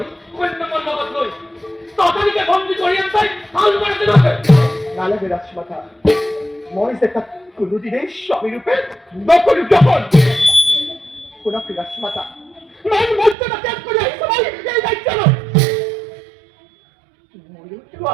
কন্যা মল্লবত লই ততদিকে বন্দি করিয়ান তাই হাল মারতে রাখে নালে রাজমাতা মই সেটা কোনদিনে স্বামী রূপে নকল যখন কোনা রাজমাতা মান মর্যাদা ত্যাগ করে এই সময় এই দায়িত্ব নয় ময়ো তো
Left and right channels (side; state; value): left; drops out; at 13.4 s